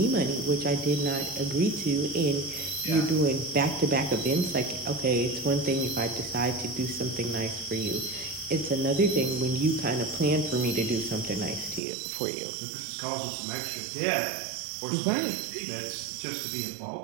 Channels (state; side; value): drops out; left; at 11.8 s